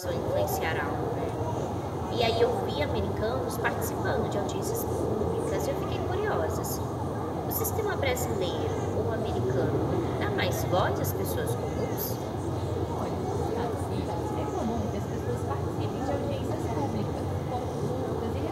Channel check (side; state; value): both; identical; correlation 1.00